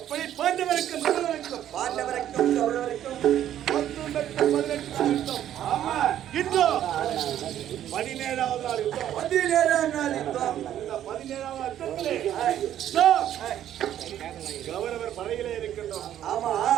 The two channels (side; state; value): left; quieter; 11.3 dB